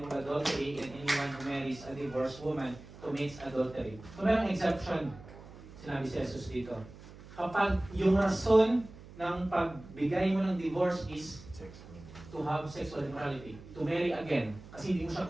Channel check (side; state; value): right; noise; hum, 18 dB below the sound